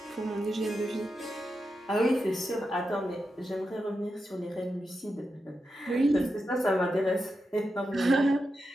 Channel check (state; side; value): normal; both; correlation 0.88